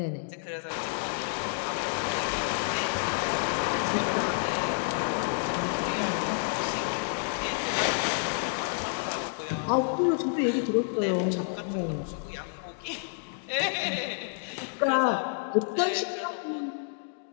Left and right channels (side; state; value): right; silent; digital silence